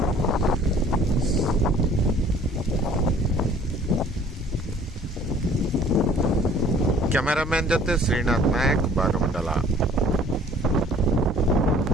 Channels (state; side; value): normal; both; correlation 0.53